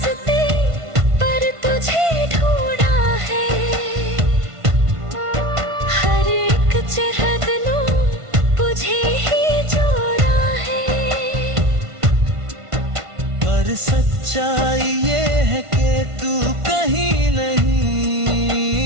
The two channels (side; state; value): left; late; 1.5 ms